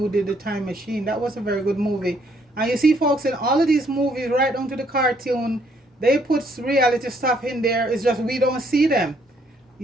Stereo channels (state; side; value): normal; both; correlation 0.68